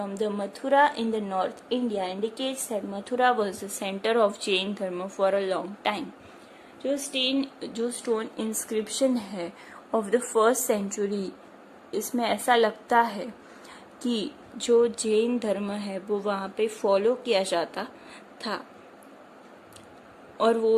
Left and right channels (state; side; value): identical; both; correlation 1.00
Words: the Mathura in the North India indicates that Mathura was the center of Jain Dharma for a long time. जो stone inscription है of the 1st century, इसमें ऐसा लगता है कि जो जैन धर्म है वो वहाँ पे फॉलो किया जाता था और वो